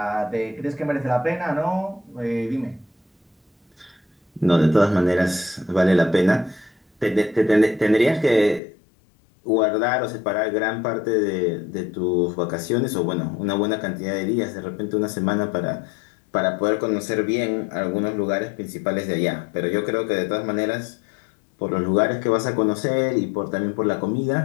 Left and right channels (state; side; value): drops out; right; at 8.6 s